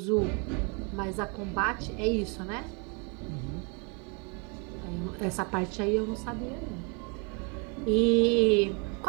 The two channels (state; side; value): quieter; left; 34.3 dB